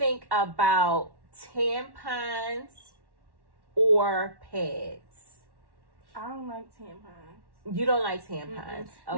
about tampons or pads? I don't like tampons. You don't like tampons. Okay.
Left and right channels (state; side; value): late; left; 1.1 ms